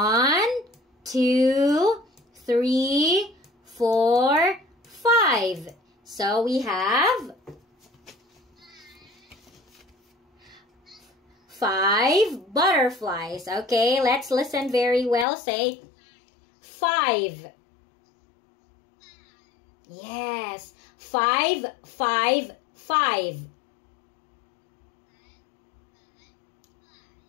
2, 3, 4, 5. So we have 5 butterflies. Okay, let's listen very well. Say 5. Yes, 5, 5, 5.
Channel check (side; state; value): right; drops out; at 15.2 s